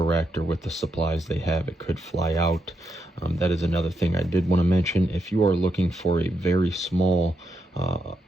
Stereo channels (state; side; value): normal; both; correlation 0.81